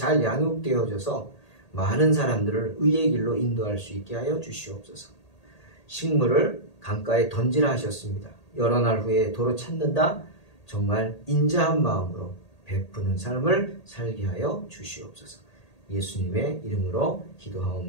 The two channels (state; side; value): late; right; 1.8 ms